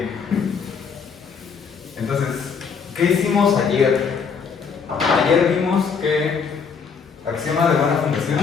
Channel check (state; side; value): quieter; right; 5.9 dB